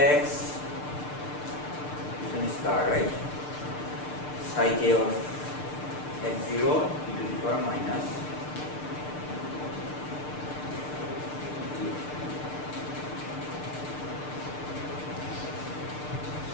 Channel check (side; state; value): right; late; 6.7 ms